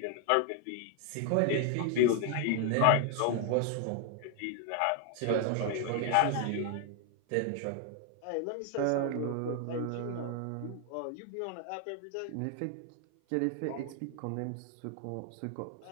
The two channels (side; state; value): both; different; correlation 0.01